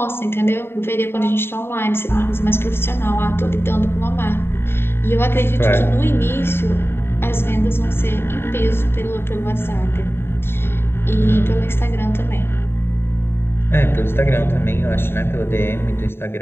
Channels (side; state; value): right; late; 0.11 ms